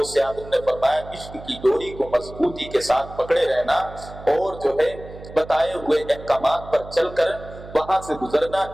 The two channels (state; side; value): noise; right; hum, 15 dB below the sound